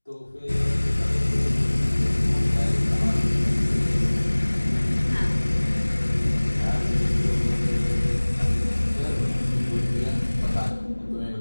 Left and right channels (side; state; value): both; inverted; correlation -1.00